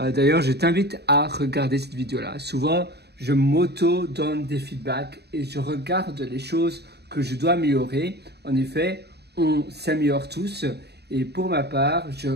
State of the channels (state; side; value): late; left; 0.48 ms